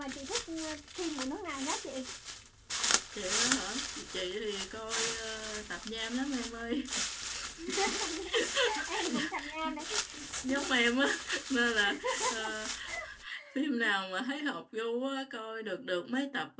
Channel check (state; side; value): identical; both; correlation 1.00